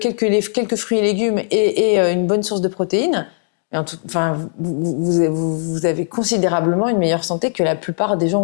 fruits et légumes et une bonne source de protéines, enfin, vous avez considérablement une meilleure santé que la plupart des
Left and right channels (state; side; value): silent; right; digital silence